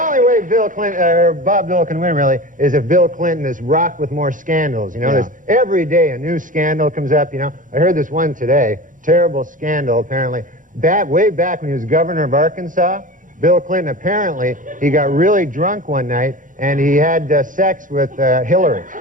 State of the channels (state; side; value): late; left; 0.38 ms